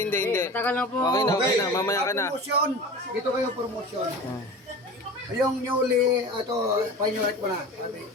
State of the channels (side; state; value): both; normal; correlation 0.35